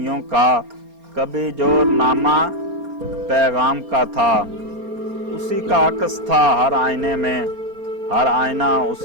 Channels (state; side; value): late; left; 4.3 ms